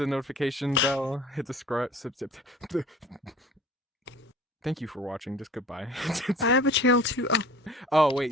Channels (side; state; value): both; normal; correlation 0.46